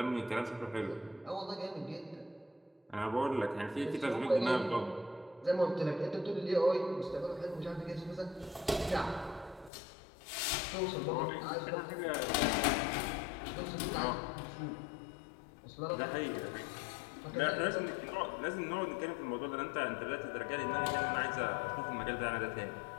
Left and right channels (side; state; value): right; drops out; at 9.7 s